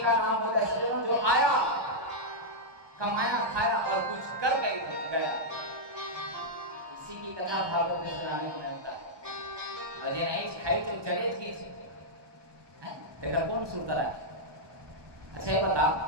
नाम होता है सज्जनों जो आया, कमाया, खाया और कुछ कर गया, उसी की कथा भागवत में सुनाने को मिलता है। और ये नहीं खाई तो चले की देखा कौन सुनता रहा। अच्छा ये बता,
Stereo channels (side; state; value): left; late; 1.2 ms